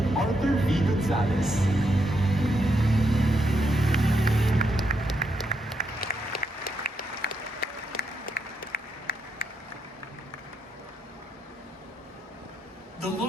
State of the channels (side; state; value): both; normal; correlation 0.80